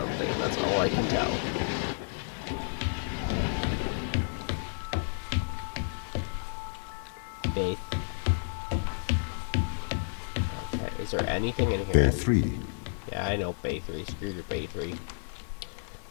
that's all I can tell. Faith. Okay, is there anything in here? Bay 3. Yeah, I know Bay 3. Screw your Bay 3.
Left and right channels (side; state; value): right; silent; 57 dB below the other